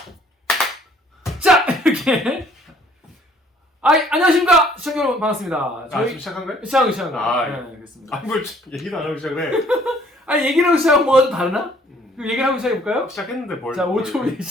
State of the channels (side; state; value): both; normal; correlation 0.60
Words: 자 이렇게 안녕하십니까 시청자 여러분 반갑습니다. 지금 시작한 거예요? 시작한 거. 아, 네, 그렇습니다. 뭘 얘기도 안 하고 시작을 해. 아니 얘기를 하고 시작하면 뭐가 좀 다르나? 그럼 얘기를 하고 시작해볼까요? 시작했는데 뭘? 자 5초 후에